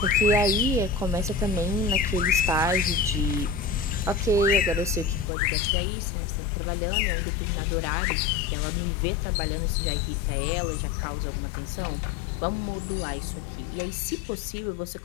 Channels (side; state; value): right; drops out; at 5.2 s